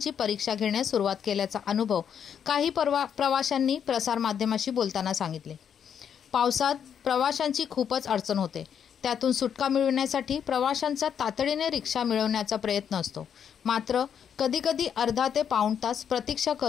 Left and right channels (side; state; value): right; quieter; 8.2 dB